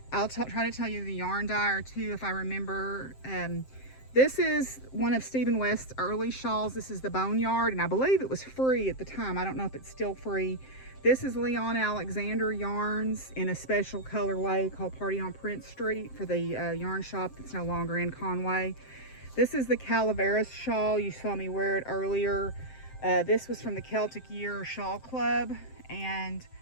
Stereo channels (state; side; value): late; right; 7.7 ms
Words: try to tell you the yarn dyer too, if I remember. This is one of Stephen West's early shawls. This is the Boneyard, and I believe it was free at the time. I don't know if it's still free. This is Leon Alexander yarns in a special colorway called Party on Prince Street for the yarn shop that's no longer in Conway. This is the Calaveras shawl. You saw me wear it earlier. This was from the Celtic Year Shawl Club, and